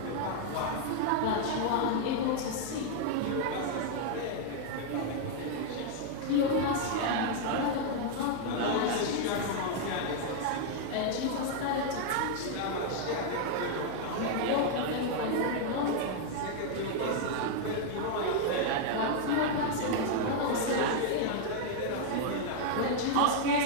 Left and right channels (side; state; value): both; different; correlation 0.00